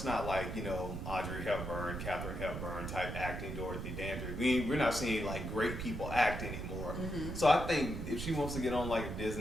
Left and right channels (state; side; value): noise; right; rumble, 5 dB below the sound